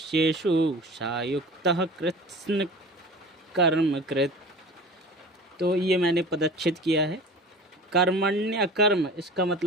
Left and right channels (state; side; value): normal; both; correlation 0.38